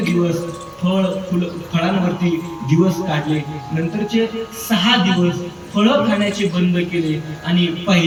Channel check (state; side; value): identical; both; correlation 1.00